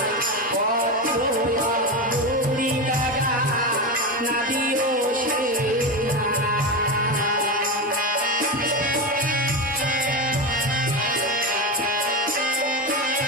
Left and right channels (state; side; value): normal; both; correlation 0.17